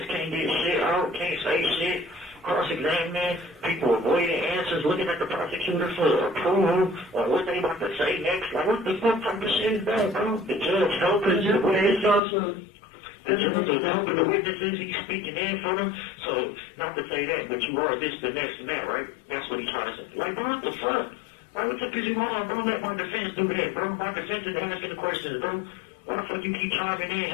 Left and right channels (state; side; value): drops out; right; at 12.2 s